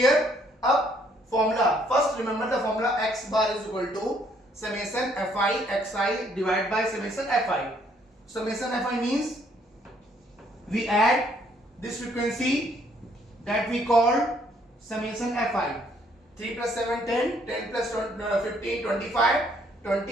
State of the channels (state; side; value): normal; both; correlation 0.66